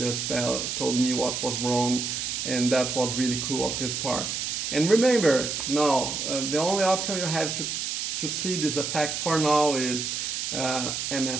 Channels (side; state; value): right; noise; hiss, 3 dB below the sound